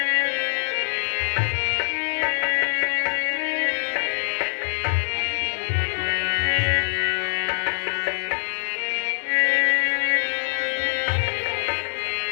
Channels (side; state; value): right; silent; digital silence